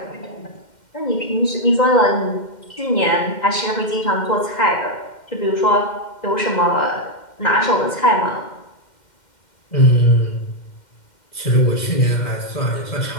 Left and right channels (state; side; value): late; right; 2.1 ms